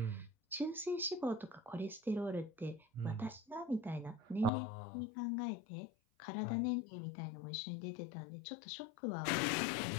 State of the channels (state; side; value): drops out; right; at 4.5 s